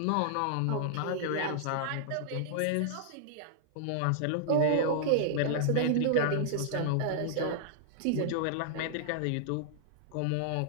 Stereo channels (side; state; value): both; different; correlation -0.01